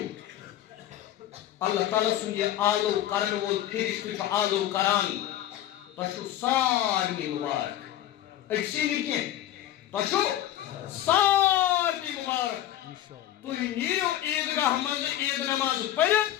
اللہ تعالیٰ سُنٛد یہِ آلو کرن وول فرشتہٕ چھُ آلو کران تۄہہِ چھُو سارنٕے مُبارک أکسٕے نہٕ کینٛہہ تۄہہِ چھُو سارنٕے مُبارک تُہۍ نیٖرِو عیٖدگاہ منٛز عیٖد نٮ۪ماز پٔرِتھ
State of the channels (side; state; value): right; quieter; 12.6 dB